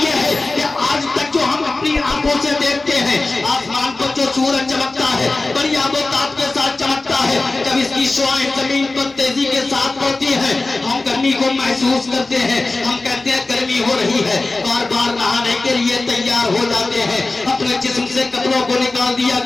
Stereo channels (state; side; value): quieter; right; 3.2 dB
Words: ہے کہ آج تک جو ہم اپنی آنکھوں سے دیکھتے ہیں آسمان کو جو سورج چمکتا ہے بڑی آب و تاب کے ساتھ چمکتا ہے، جب اس کی شعاعیں زمین پر تیزی کے ساتھ پڑتی ہیں ہم گرمی کو محسوس کرتے ہیں، ہم کہتے ہیں گرمی ہو رہی ہے، بار بار نہانے کے لیے تیار ہو جاتے ہیں، اپنے جسم سے کپڑوں کو نکال دیا